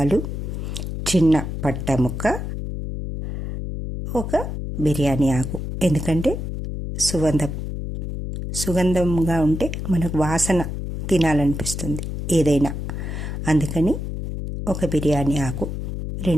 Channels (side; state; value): left; noise; hum, 5 dB below the sound